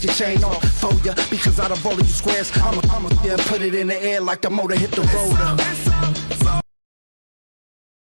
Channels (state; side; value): inverted; both; correlation -1.00